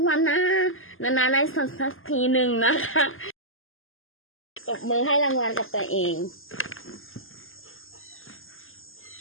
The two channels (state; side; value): late; right; 0.59 ms